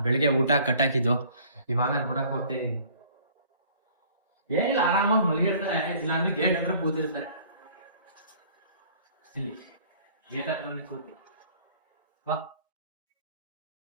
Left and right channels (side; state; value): both; inverted; correlation -0.53